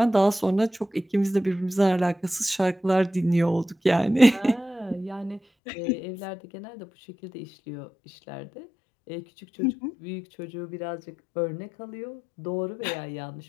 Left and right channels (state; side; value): drops out; right; at 5.4 s